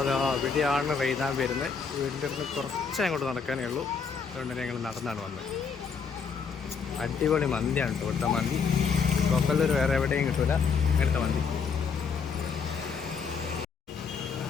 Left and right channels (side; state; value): right; quieter; 5.8 dB